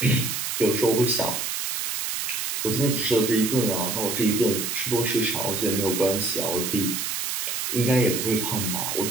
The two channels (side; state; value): right; noise; hiss, 2 dB below the sound